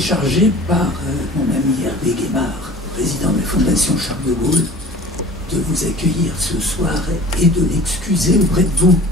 par mon ami Hervé Guémard, président de la Fondation Charles de Gaulle, de vous accueillir ce soir et de l'excuser auprès de vous.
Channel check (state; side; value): normal; both; correlation 0.43